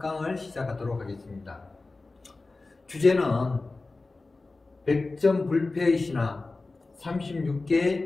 시작하도록 하겠습니다. 주제는 100점 불패의 신화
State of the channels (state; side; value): quieter; right; 3.5 dB